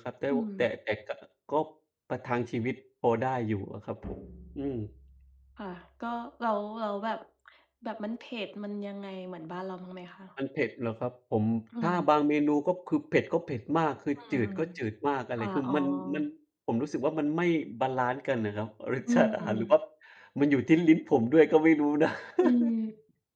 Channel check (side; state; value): both; identical; correlation 1.00